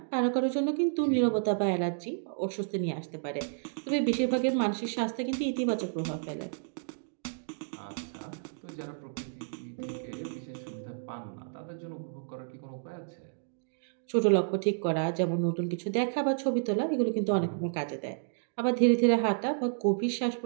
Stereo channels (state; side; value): silent; left; digital silence